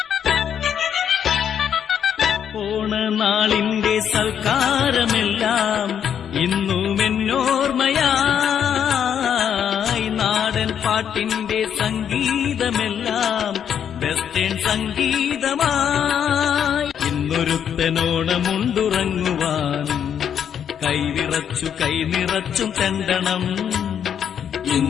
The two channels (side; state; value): right; quieter; 8.6 dB